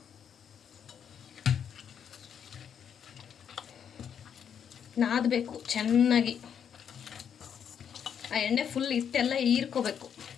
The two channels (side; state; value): right; quieter; 8.1 dB